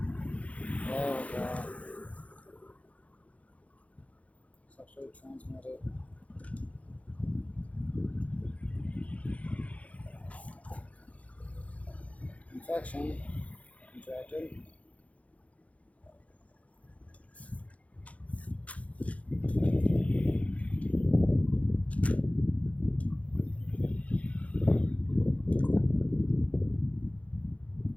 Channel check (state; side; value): late; right; 0.066 ms